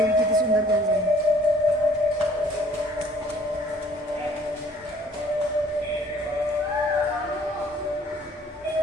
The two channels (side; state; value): both; normal; correlation 0.57